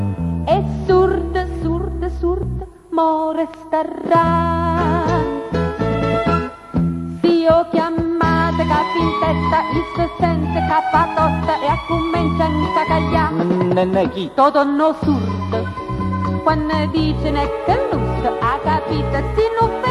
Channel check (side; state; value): both; identical; correlation 1.00